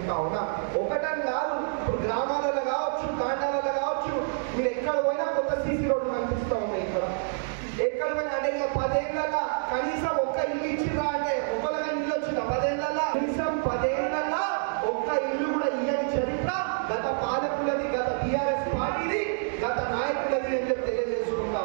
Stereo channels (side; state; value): left; silent; digital silence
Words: ఉన్నా. ఒకటని కాదు, ఇప్పుడు గ్రామాలలో కావచ్చు, తాండాలలో కావచ్చు, మీరు ఎక్కడ పోయినా కొత్త సీసీ రోడ్లు కనిపిస్తూ ఉన్నాయి. ఎక్కడ పోయినా అంటే 10 ఏళ్ళ కనీసం ఒక్క ఇల్లు ఇచ్చిరా అంటే ఒకళ్ళగా ఇల్లు వచ్చిందా? 10 ఏళ్ళ కనీసం 10 ఏళ్ళ ఒక్క ఇల్లు కూడా ఇయ్యని చరిత్ర గత పాలకులది, గత టీఆర్ఎస్ పార్టీది, గత నాయకులది అని చెప్పి తెలియజేసుకుంటా